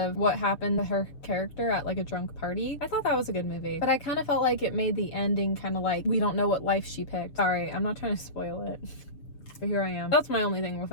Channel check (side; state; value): right; late; 6.9 ms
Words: what happened to her character at like a drunk party. I thought that was a good movie, but I kind of felt like it made the ending kind of like, we don't know what life she picked. Sorry, I'm not trying to spoil it, but here I am. That's my only thing with